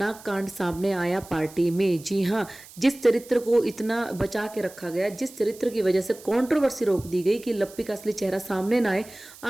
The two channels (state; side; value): noise; right; hiss, 20 dB below the sound